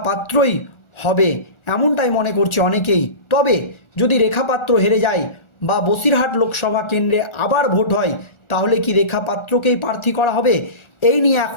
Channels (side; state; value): right; late; 1.4 ms